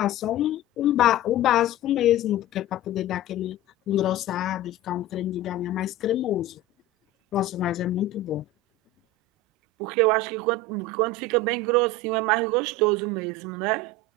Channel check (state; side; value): normal; both; correlation 0.31